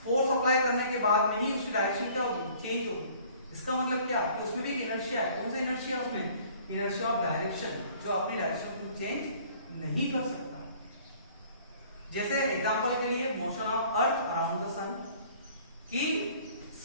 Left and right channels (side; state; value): both; inverted; correlation -0.54